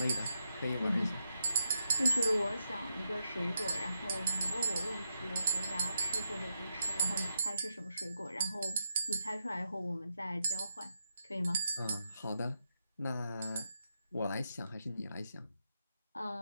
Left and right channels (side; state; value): both; inverted; correlation -0.83